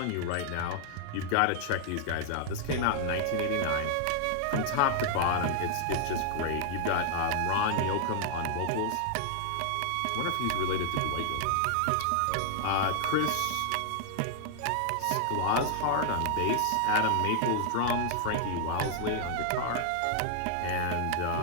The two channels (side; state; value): both; different; correlation 0.00